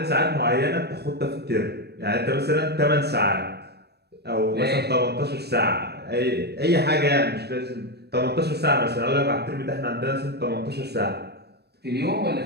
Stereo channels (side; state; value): left; late; 0.47 ms